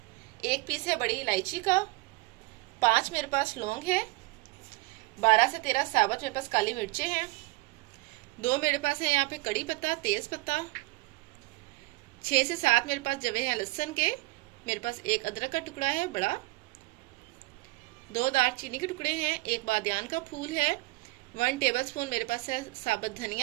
1 पीस है बड़ी इलायची का। 5 मेरे पास लौंग है। 12 से 13 साबुत मेरे पास काली मिर्चें हैं। 2 मेरे पास है यहाँ पे कड़ी पत्ता, तेज पत्ता। 6 से 7 मेरे पास जवे हैं लहसुन के। मेरे पास 1 अदरक का टुकड़ा है बड़ा। 2 दालचीनी के टुकड़े हैं। 1 बादियान का फूल है। 1 टेबल स्पून मेरे पास है साबुत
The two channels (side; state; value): left; quieter; 23.1 dB